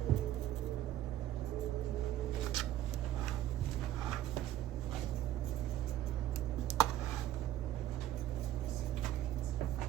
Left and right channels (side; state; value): left; quieter; 12.7 dB